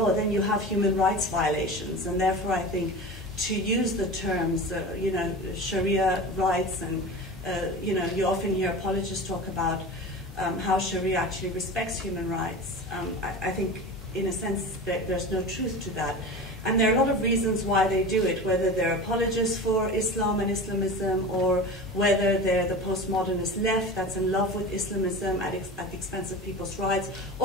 then you have human rights violations. And therefore, I think to use the terms, you know, Sharia rights, and you know, you often hear apologists talk about how Sharia actually respects human rights. I think, in a sense, there's no truth to that. And there are a lot of reasons why they do it, whether they're apologists for Islam and Islamism, or whether they're the postmodernist left that's in love with Islamism at the expense of people's rights,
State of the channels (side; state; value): both; normal; correlation 0.32